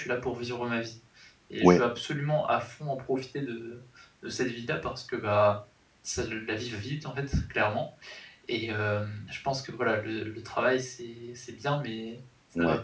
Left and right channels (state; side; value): identical; both; correlation 1.00